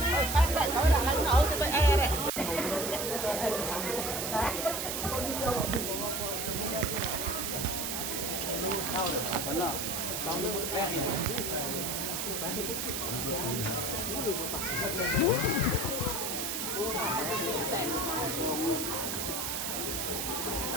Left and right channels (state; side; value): noise; right; hiss, 2 dB below the sound